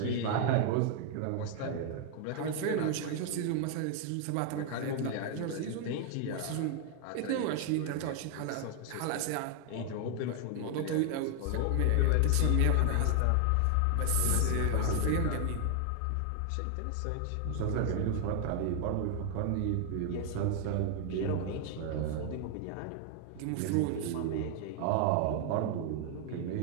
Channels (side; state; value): both; different; correlation 0.00